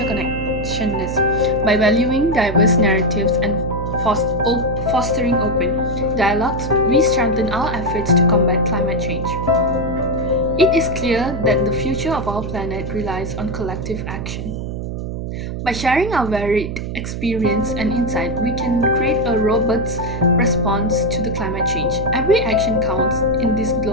By valuing diverse narratives and fostering open dialogues, we strengthen our efforts to combat climate change. It is clear that the future of our planet relies on collective action. By sharing our varied experience and insight, we can create a robust response to the climate change. Every action counts in this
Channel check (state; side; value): noise; right; hum, 5 dB below the sound